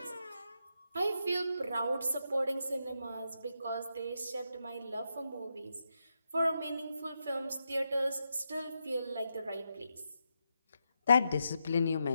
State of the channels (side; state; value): both; inverted; correlation -0.84